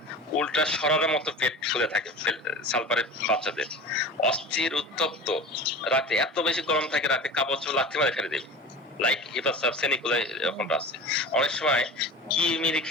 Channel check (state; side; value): normal; both; correlation 0.34